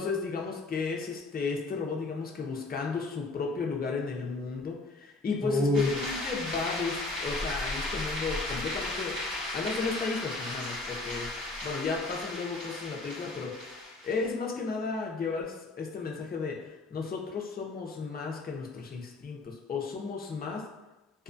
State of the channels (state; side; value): quieter; right; 3.3 dB